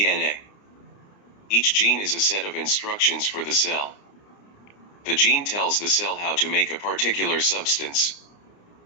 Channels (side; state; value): right; late; 29 ms